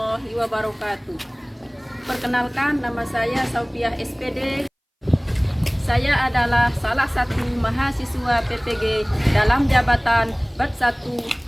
wabarakatuh. Perkenalkan, nama saya Saufiah SPD. Saya adalah salah satu mahasiswa PPG dalam jabatan BAT 1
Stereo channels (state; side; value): identical; both; correlation 1.00